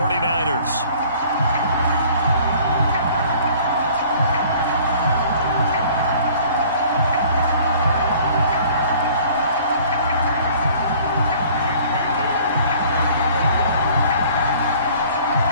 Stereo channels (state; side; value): inverted; both; correlation -0.52